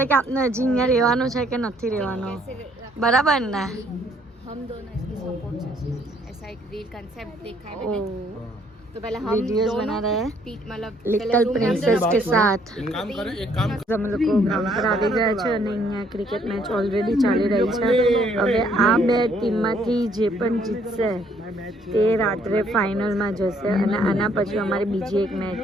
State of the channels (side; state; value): both; normal; correlation 0.65